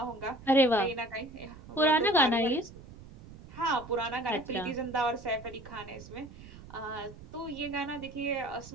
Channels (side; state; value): right; noise; rumble, 17 dB below the sound